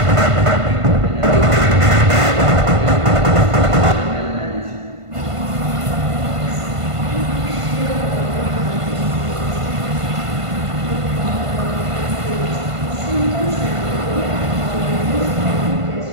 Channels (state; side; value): late; left; 1.5 ms